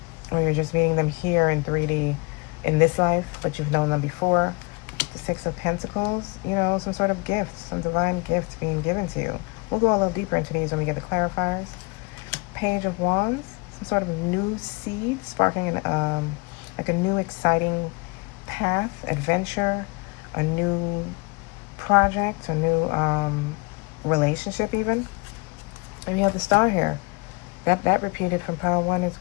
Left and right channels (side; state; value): right; quieter; 28.4 dB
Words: you're just meeting them here in 3D in this life, but you've known them before. The 6 of Pentacles, some sort of gift, some divine gift being given to you. We'll go a little deeper into these when we get the clarifiers. Page of Wands, some sort of new seed sparking like a new exciting path, adventure, a new project, a new relationship even. And you have the Star here. That repeated from pile 1 as